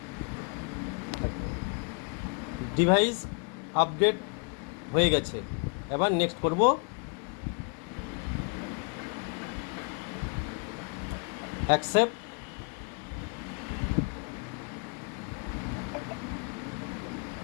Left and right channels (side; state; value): right; quieter; 37.0 dB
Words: ডিভাইস আপডেট হয়ে গেছে। এবার নেক্সট করব। অ্যাকসেপ্ট।